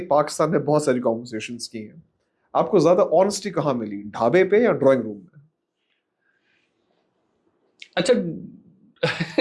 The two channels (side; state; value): both; identical; correlation 1.00